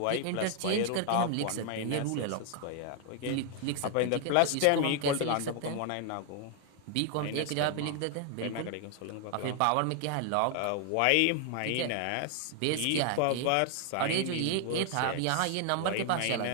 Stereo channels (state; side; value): different; both; correlation 0.00